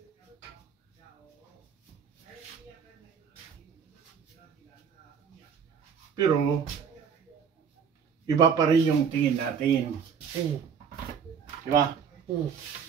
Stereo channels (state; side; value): quieter; left; 6.9 dB